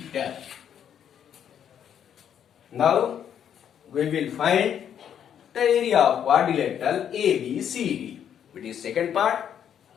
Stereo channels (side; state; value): right; quieter; 9.1 dB